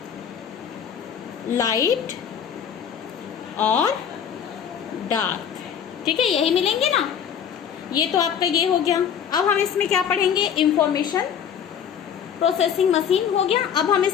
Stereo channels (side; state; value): right; quieter; 8.2 dB